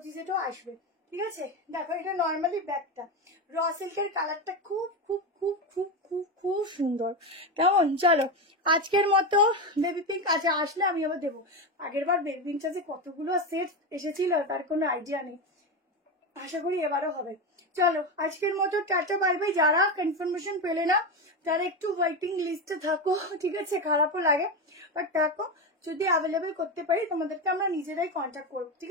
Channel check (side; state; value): both; normal; correlation 0.15